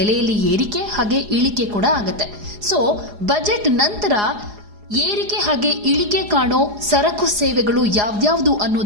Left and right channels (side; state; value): left; late; 4.8 ms